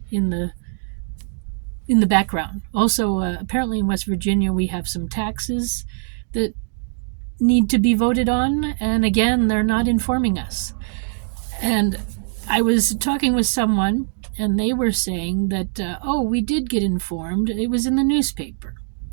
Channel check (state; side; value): silent; left; digital silence